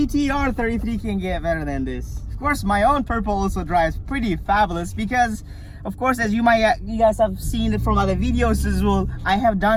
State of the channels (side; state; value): both; identical; correlation 1.00